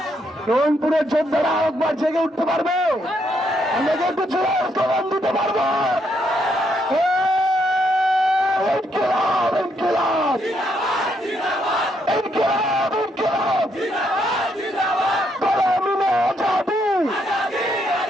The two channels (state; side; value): normal; both; correlation 0.75